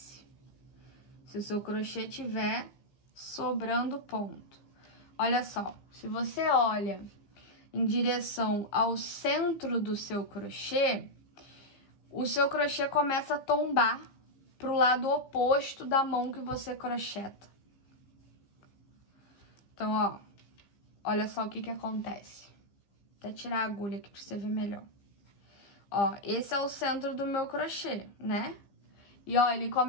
Se o seu crochê tiver sobrando ponto. Olha só, se você olha em direção ao centro do seu crochê, o seu crochê começa a tombar para o lado oposto da mão que você crocheta. Então, ó, olha só o que que acontece. Vou até tirar a agulha aqui para você ver melhor. Ó, esse é o centro do meu crochê, né? E, ó, ele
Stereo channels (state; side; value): late; right; 15 ms